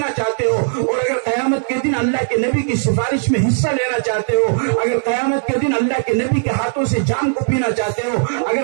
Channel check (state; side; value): silent; left; digital silence